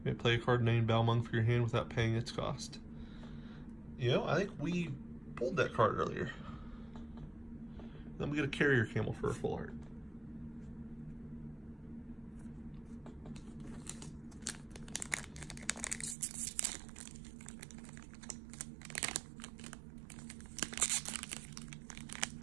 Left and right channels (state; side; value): drops out; left; at 16.2 s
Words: may play a card named Balmung for your hand without paying its cost. You know, I think we pulled that card earlier. Then we get a Carrier Camel for a full art.